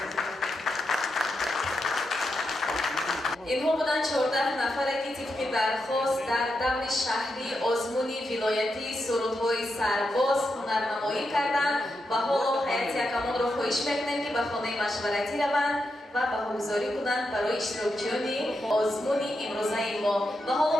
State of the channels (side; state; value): both; normal; correlation 0.85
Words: инҳо буданд 14 нафаре ки тибқи дархост дар даври шаҳри озмуни вилоятии сурудҳои сарбоз ҳунарнамоӣ карданд ва ҳоло ҳайати якамонро хоҳиш мекунем ки ба хонаи машваратӣ раванд ва баҳогузорӣ кунанд барои иштирокчиёни озмуни имрӯзаи мо. Ва ҳоло